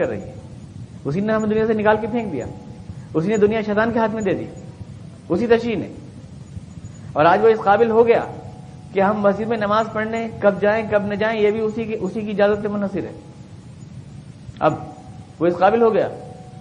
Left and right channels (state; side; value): identical; both; correlation 1.00